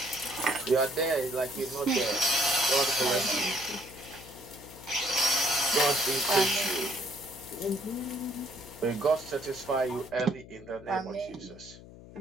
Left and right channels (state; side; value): noise; left; hum, 18 dB below the sound